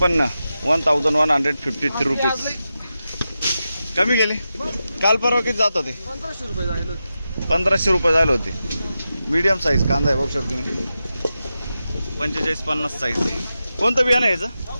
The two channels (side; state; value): both; inverted; correlation -0.91